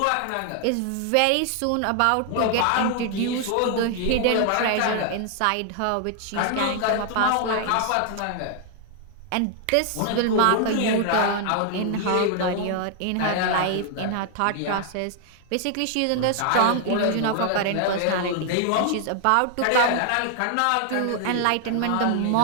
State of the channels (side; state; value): both; different; correlation 0.00